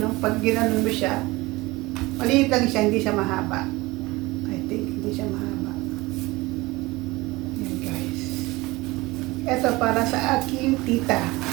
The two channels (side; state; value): left; quieter; 21.4 dB